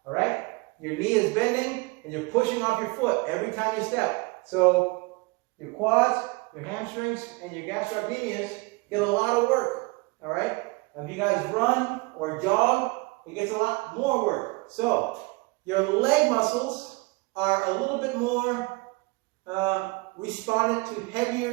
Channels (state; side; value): quieter; left; 26.3 dB